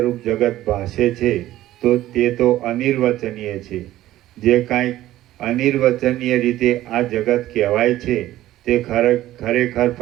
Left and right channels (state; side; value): quieter; left; 14.7 dB